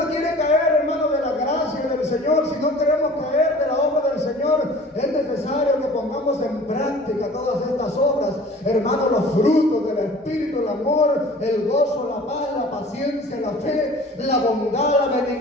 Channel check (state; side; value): normal; both; correlation 0.46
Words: quiere caer, hermano, de la gracia del Señor, si no queremos caer de la obra del Señor, es necesario que pongamos en práctica todas estas obras, hermano, los frutos del Espíritu, el amor, el gozo, la paz, la paciencia, la fe, la bondad, la